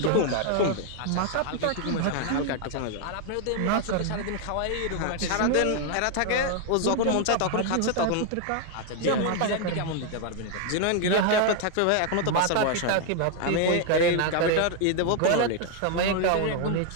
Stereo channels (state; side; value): different; both; correlation 0.00